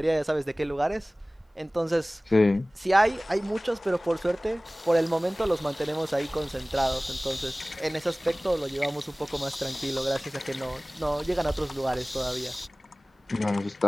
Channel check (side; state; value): both; normal; correlation 0.98